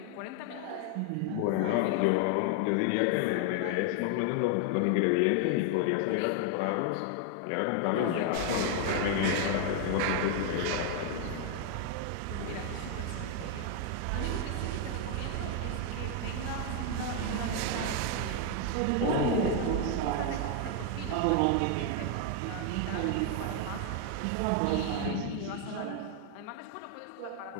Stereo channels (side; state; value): both; different; correlation 0.00